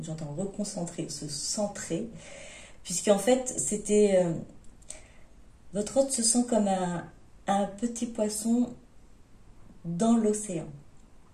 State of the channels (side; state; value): both; identical; correlation 1.00